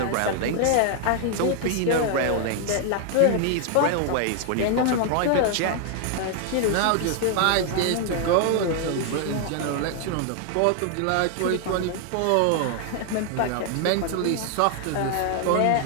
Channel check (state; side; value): different; both; correlation 0.00